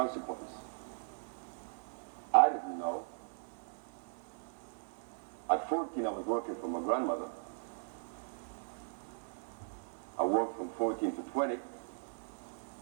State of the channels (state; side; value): silent; left; 52 dB below the other